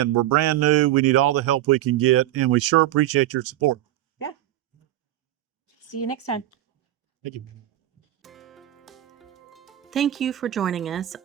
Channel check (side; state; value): left; quieter; 13.8 dB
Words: we're brand new. We need all the help we can get, and we sure appreciate your support. Yeah. See you next time. Thank you. Thank you for joining us